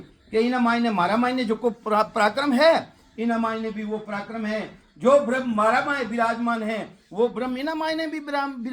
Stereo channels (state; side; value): identical; both; correlation 1.00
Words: कि इना मायने मारा मायने जो को पराक्रम है इना मायने भी वो पराक्रम है जो ब्रह्म मारा माय विराजमान है वो ब्रह्म इना मायने भी